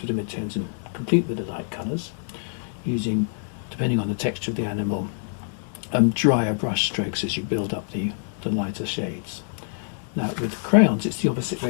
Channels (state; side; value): silent; right; digital silence